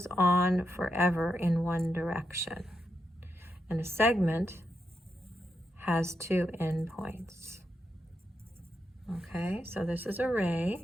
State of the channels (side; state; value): both; normal; correlation 0.84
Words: on forever in one direction. And a segment has 2 endpoints. Okay, so this is a